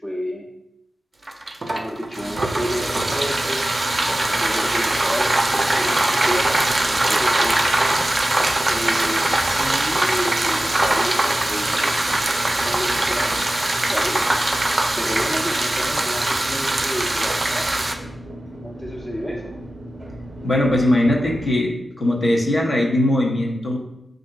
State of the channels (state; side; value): normal; both; correlation 0.94